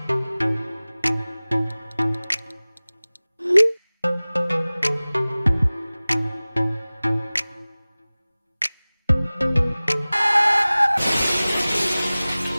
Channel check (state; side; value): inverted; both; correlation -0.99